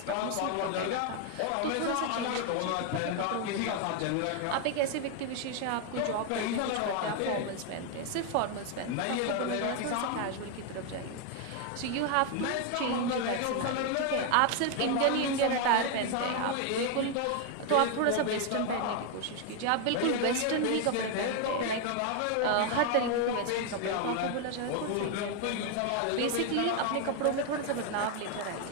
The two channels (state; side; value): different; both; correlation 0.01